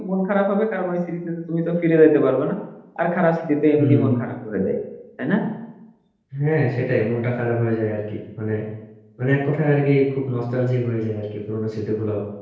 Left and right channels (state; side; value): identical; both; correlation 1.00